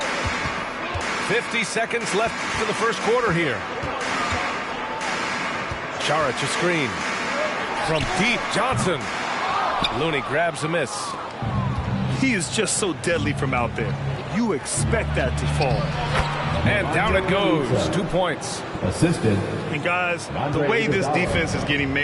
50 seconds left to the first quarter here. Saric a screen. From deep, Johnson. Looney grabs a miss. He is just so deadly from out there. You expect that to fall. And down it goes. 2 points. Assisted. And guys, the way this defense is getting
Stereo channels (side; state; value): both; identical; correlation 1.00